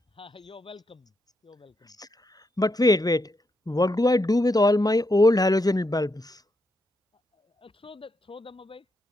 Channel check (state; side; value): normal; both; correlation 0.81